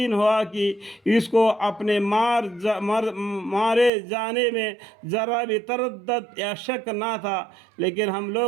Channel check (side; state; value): left; drops out; at 3.9 s